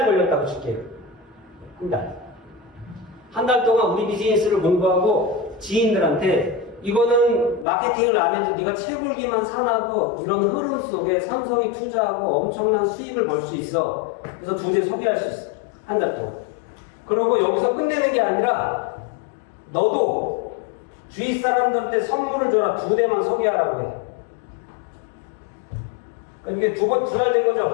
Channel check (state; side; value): drops out; right; at 7.7 s